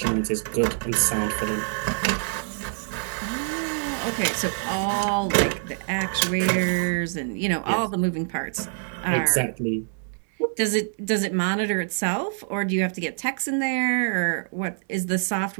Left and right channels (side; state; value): left; silent; digital silence